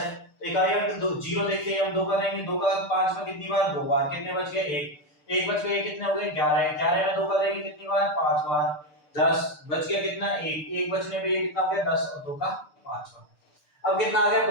तो इकाई अंक दो जीरो देखते हैं हम, 2 का देंगे, 2 का 5 में कितनी बार, 2 बार। कितने बच गए, 1। 1 बच गए, कितने हो गए, 11। 11 में 2 का देंगे कितनी बार, 5 बार। 10 बच गया, कितना, 1। 1 बचने पे ये कितना हो गया, 10 और 2 का 5 बार। अब कितना आ गया,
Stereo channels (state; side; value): late; right; 6.8 ms